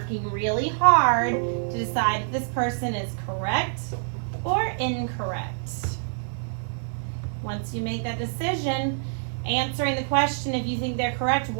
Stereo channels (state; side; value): silent; left; digital silence